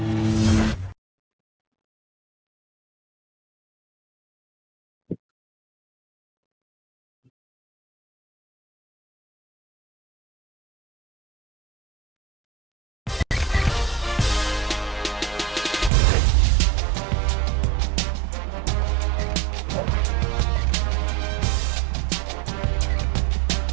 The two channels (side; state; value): left; drops out; at 15.9 s